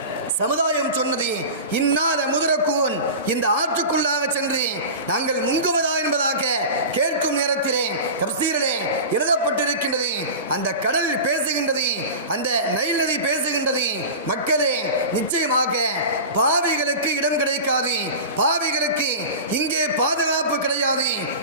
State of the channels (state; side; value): inverted; both; correlation -0.31